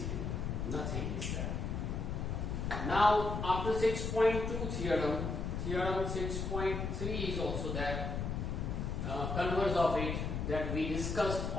Nothing is there. Now after 6.2 theorem, theorem 6.3 is also there. Converse of it that we discussed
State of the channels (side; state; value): left; noise; rumble, 2 dB below the sound